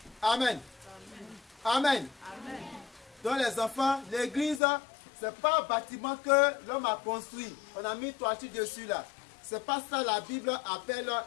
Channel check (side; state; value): right; drops out; at 4.6 s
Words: Amen. Amen. Amen. Donc les enfants, l'église, c'est pas un bâtiment que l'homme a construit. On a mis toiture dessus là. C'est pas ça la Bible appelle